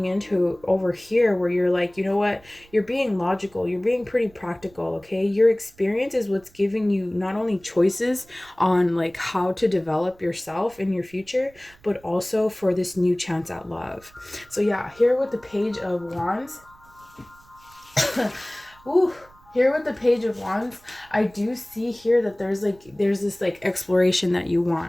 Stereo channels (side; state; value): right; noise; rumble, 28 dB below the sound